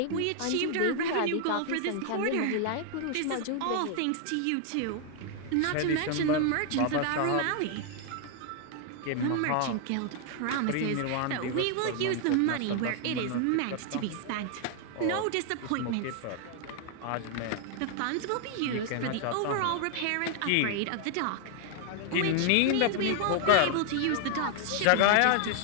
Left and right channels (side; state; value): both; different; correlation 0.00